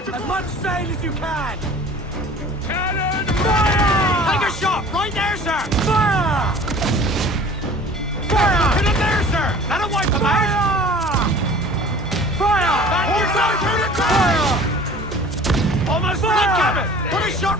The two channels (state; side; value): normal; both; correlation 0.45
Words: as much sail as you can! Cannon! Fire! Take a shot! Right there, sir! Fire! Fire! Hit him there, sir! That'll wipe him out! Fire! Fire! Almost Fire! cabin! Put a